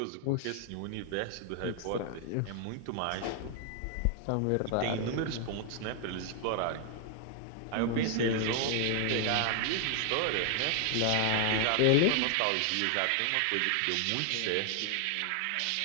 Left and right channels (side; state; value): both; different; correlation 0.00